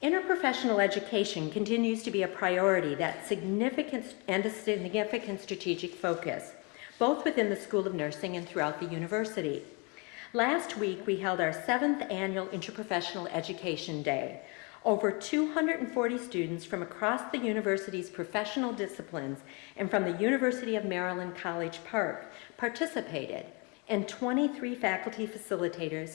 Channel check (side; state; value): right; quieter; 31.2 dB